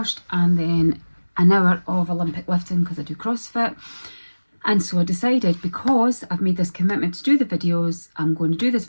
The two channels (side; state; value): both; inverted; correlation -1.00